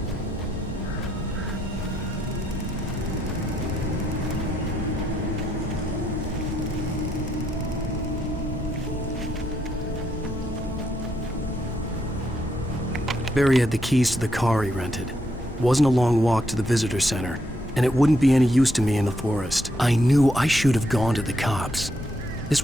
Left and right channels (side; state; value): both; normal; correlation 0.77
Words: Barry had the keys to the car he rented. It wasn't a long walk to the visitor center, and it wouldn't be any use to me in the forest. I knew I should have gone to the cops. This